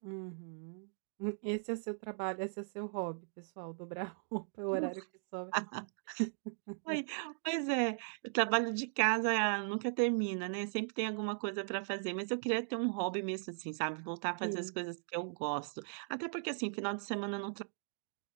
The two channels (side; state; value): left; silent; digital silence